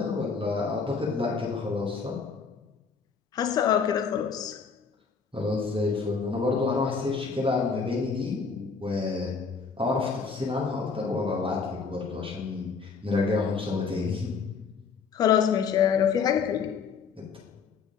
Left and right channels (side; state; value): right; quieter; 5.4 dB